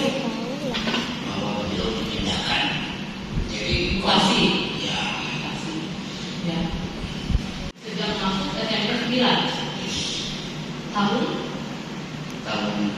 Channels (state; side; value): identical; both; correlation 1.00